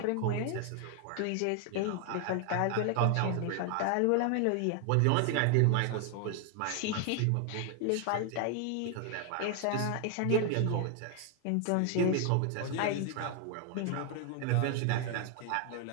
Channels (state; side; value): different; both; correlation 0.00